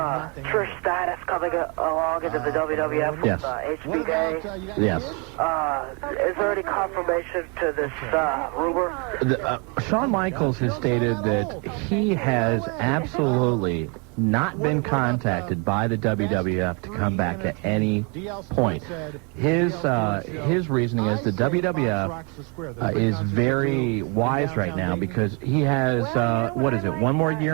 Stratus coming along into the WWF with HBK. Yes. Is there any confirmation to this rumor? Shawn Michaels has stated that he has absolutely not been contacted by the WWF to come back at any point. His reasoning is the WWF is very wise right now because he has, one more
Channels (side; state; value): left; quieter; 33.2 dB